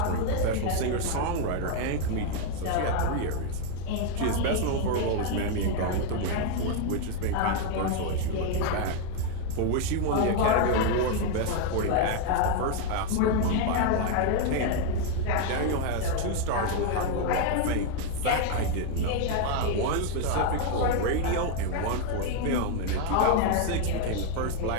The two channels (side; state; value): both; different; correlation 0.01